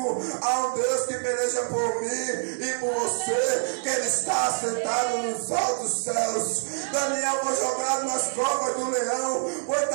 há um Deus que peleja por mim e por você, que Ele está assentado nos altos céus. Daniel foi jogado nas covas do leão, foi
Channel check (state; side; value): silent; left; digital silence